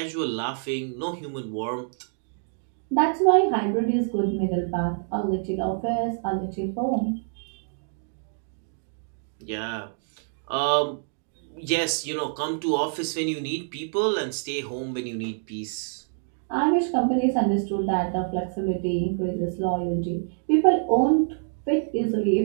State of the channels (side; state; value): left; silent; digital silence